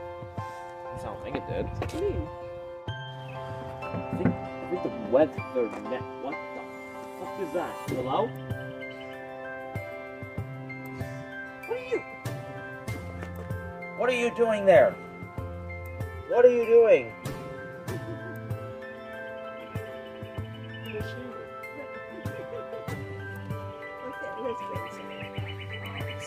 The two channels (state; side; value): identical; both; correlation 1.00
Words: At least I don't think it did. It's clean. I think the weather net. What the fuck is that? Hello? What are you doing there? What are you doing?